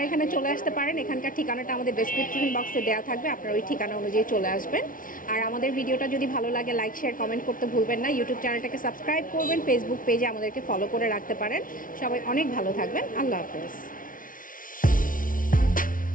এখানে চলে আসতে পারেন, এখানকার ঠিকানাটা আমাদের ডেসক্রিপশন বক্সে দেওয়া থাকবে, আপনারা ওই ঠিকানা অনুযায়ী চলে আসবেন। আর আমাদের ভিডিওটা যদি ভালো লাগে লাইক শেয়ার কমেন্ট করতে ভুলবেন না। ইউটিউব চ্যানেলটাকে সাবস্ক্রাইব করবেন, ফেসবুক পেজে আমাদেরকে ফলো করে রাখতে পারেন। সবাই অনেক ভালো থাকবেন। আল্লাহ হাফেজ।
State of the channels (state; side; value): late; right; 0.39 ms